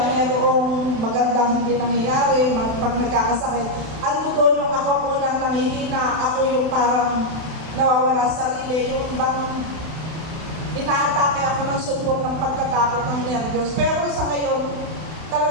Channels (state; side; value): late; left; 32 ms